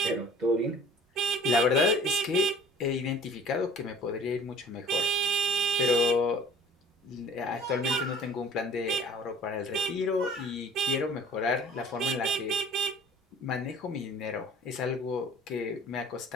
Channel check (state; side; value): normal; both; correlation 0.48